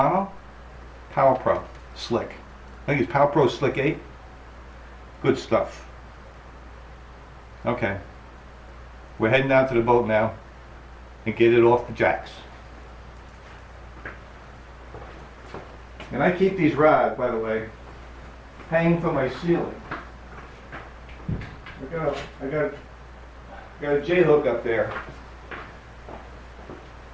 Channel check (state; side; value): identical; both; correlation 1.00